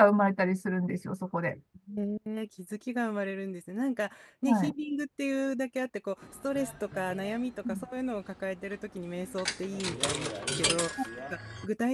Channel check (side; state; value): both; identical; correlation 1.00